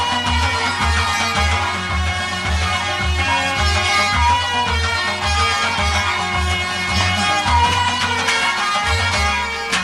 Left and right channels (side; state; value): both; identical; correlation 1.00